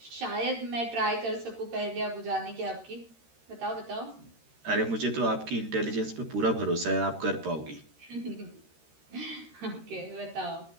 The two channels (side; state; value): left; late; 13 ms